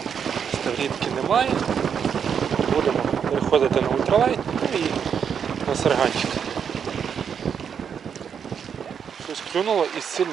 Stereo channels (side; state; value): left; quieter; 7.4 dB